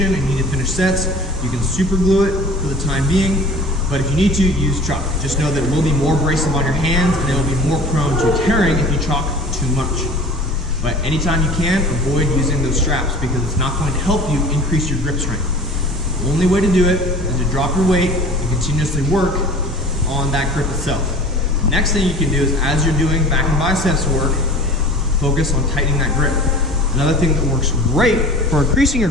and you need to finish sets, you can super glue it for the time being. But if you need to, use chalk. Just know that it will be more abrasive on your hands and it will be more prone to tearing if you chalk too much. But anytime you can, avoid using those straps because it's not going to help you increase your grip strength. The only way to do it is to drop your weight and continuously work on that grip itself. The next thing you can do is as you're doing back and biceps work, focus on tightening that grip. Another thing that works great for increasing your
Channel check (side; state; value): both; normal; correlation 0.41